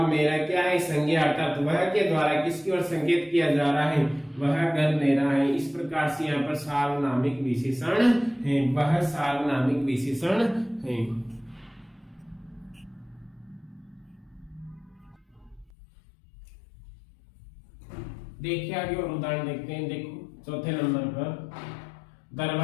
मेरा क्या है? संज्ञा, अर्थात वह के द्वारा किसकी ओर संकेत किया जा रहा है? वह घर मेरा है। इस प्रकार से यहाँ पर सार्वनामिक विशेषण है, वह सार्वनामिक विशेषण है। देखिए आगे और उदाहरण देखते हैं। देखो चौथे नंबर पर,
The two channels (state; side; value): drops out; right; at 15.7 s